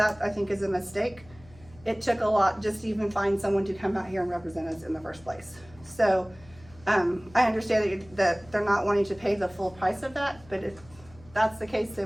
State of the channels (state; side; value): noise; left; hum, 24 dB below the sound